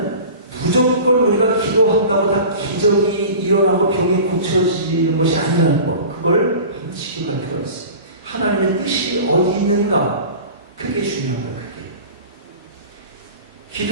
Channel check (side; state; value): both; inverted; correlation -0.38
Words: 무조건 우리가 기도한다고 다 기적이 일어나고 병이 고쳐지는 것이 아니라는 거. 그걸 반드시 기억할 필요가 있어요. 하나님의 뜻이 어디 있는가? 그게 중요한 거예요. 그게.